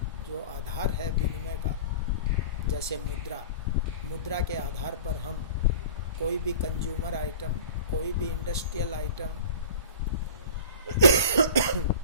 जो आधार है विनिमय का, जैसे मुद्रा के आधार पर हम कोई भी कंज्यूमर आइटम, कोई भी इंडस्ट्रियल आइटम,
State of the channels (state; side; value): inverted; both; correlation -0.38